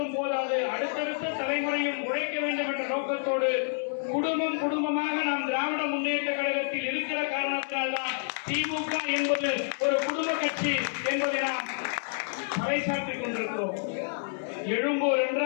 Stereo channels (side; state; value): right; silent; digital silence